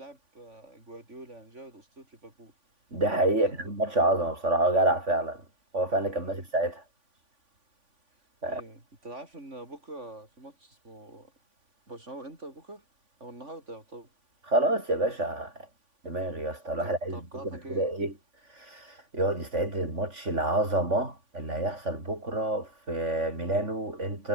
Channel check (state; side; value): late; left; 3.5 ms